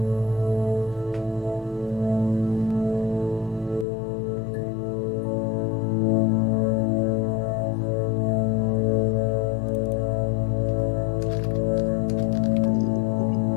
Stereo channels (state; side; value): drops out; right; at 3.9 s